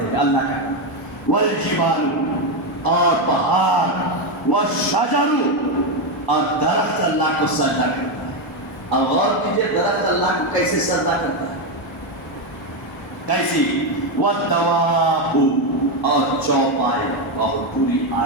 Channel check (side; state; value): both; normal; correlation 0.08